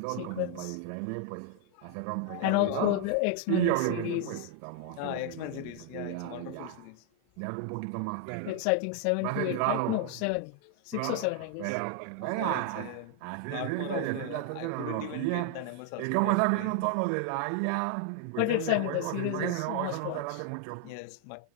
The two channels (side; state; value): both; different; correlation 0.00